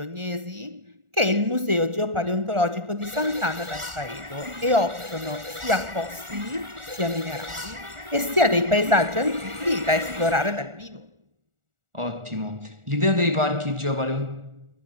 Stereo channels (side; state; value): left; late; 1.4 ms